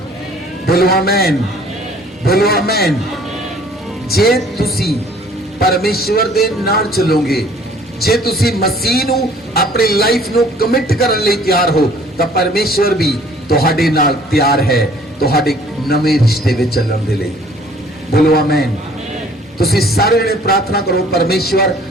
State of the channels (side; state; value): both; normal; correlation 0.55